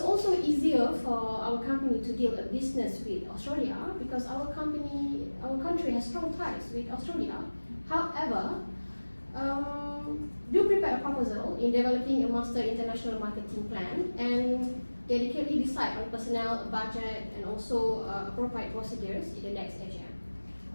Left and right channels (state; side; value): inverted; both; correlation -1.00